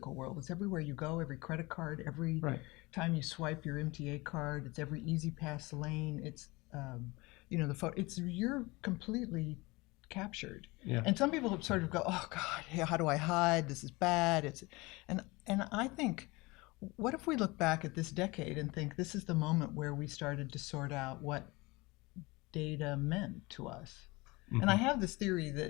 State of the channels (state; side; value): quieter; right; 23.5 dB